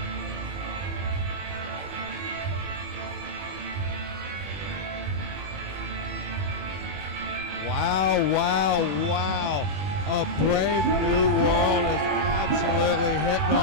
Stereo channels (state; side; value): late; left; 21 ms